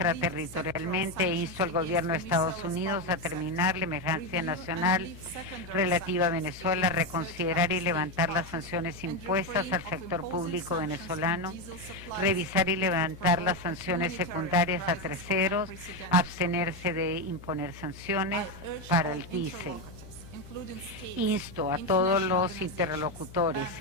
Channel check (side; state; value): left; noise; hum, 17 dB below the sound